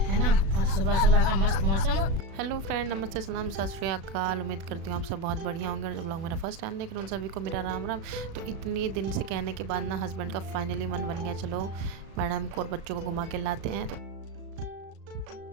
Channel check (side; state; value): left; late; 36 ms